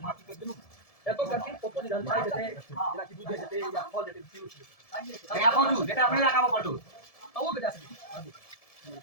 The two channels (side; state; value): right; late; 1.7 ms